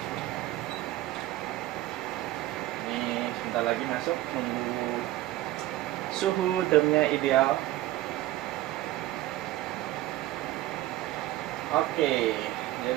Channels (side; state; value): left; quieter; 15.7 dB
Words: Sebentar lagi masuk, nunggu suhu drumnya ideal. Oke,